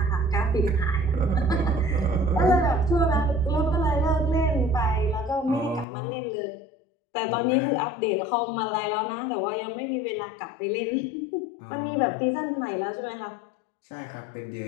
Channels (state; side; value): drops out; right; at 5.9 s